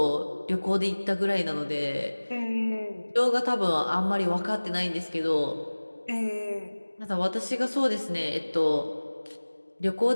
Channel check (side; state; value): both; inverted; correlation -1.00